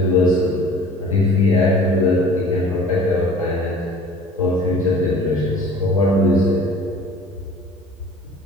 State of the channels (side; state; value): both; normal; correlation 0.47